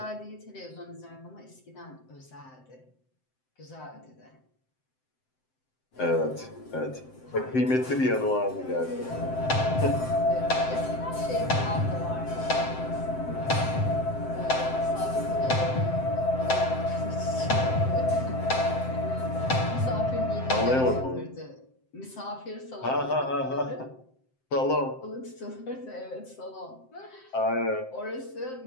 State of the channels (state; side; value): late; right; 7.7 ms